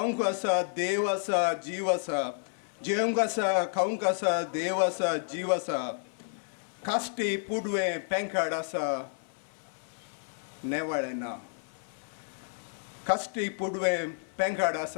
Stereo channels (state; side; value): silent; right; 57 dB below the other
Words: आसा देव आसा जीव आसा. जेवंक आसा खावंक आसा देव आसा जीव आसा. कास्टी पुडवें पेंकाड आसा नेवाळें ना. कास्टी पुडवें पेंकाड